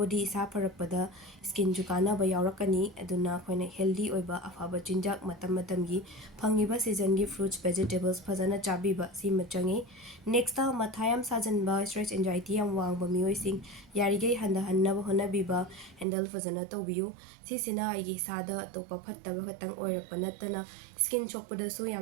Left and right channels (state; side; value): drops out; left; at 16.1 s